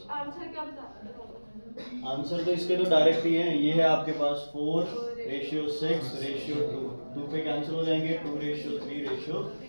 आंसर क्या बता? आंसर तो इसके तो डायरेक्ट ही है, ये है आपके पास 4:6:2, 2 पे कैंसिल हो जाएंगे,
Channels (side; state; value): both; inverted; correlation -1.00